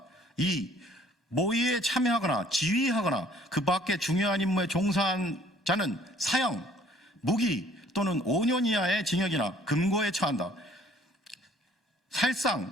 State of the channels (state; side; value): normal; both; correlation 0.58